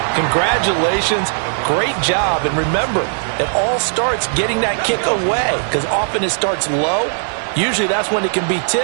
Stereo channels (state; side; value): silent; left; digital silence